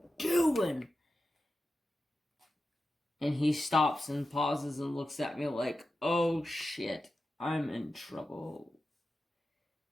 doing? And he stops and pauses and looks at me like, oh shit, I'm in trouble.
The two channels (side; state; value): both; normal; correlation 0.91